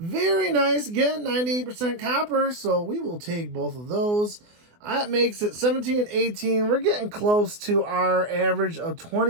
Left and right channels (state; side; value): late; left; 24 ms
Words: nice. Again, 98% copper. So we will take both of those. That makes it 17 and 18. We're getting close to our average of